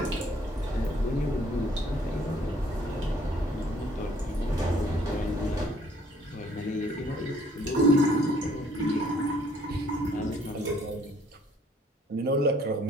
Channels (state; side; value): normal; both; correlation 0.62